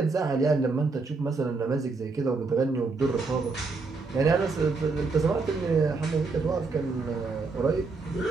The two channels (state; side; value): quieter; left; 4.0 dB